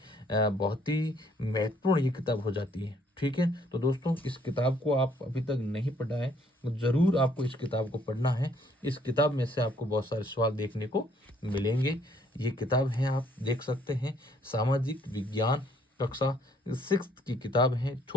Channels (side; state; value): both; normal; correlation 0.65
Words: बहुत ही महत्वपूर्ण ये किताब हो जाती है। ठीक है, तो दोस्तों इस किताब को आप अभी तक नहीं पढ़ा है तो ज़रूर आपको इस किताब को पढ़ना है। इस किताब में से आपको बहुत सारे सवाल देखने को मिलेंगे। ये किताब है, आप देख सकते हैं, सामाजिक विज्ञान कक्षा 6 की किताब है।